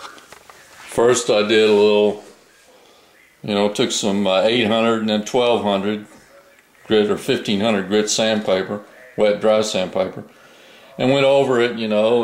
First I did a little, took some 800 and then 1200 grit or 1500 grit sandpaper, wet dry sandpaper, and went over it,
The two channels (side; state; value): both; identical; correlation 1.00